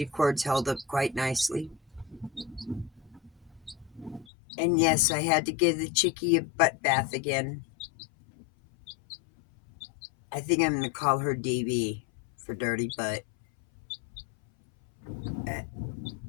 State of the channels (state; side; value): drops out; right; at 4.2 s